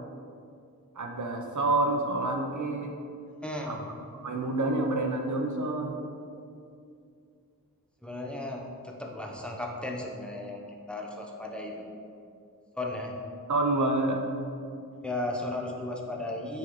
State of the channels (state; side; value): normal; both; correlation 0.15